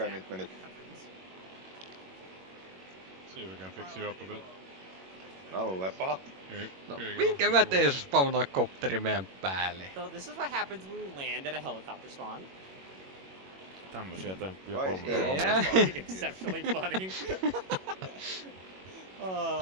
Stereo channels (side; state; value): left; late; 21 ms